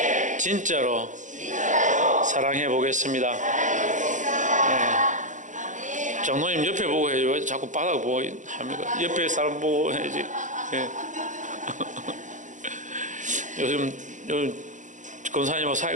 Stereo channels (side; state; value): left; late; 0.36 ms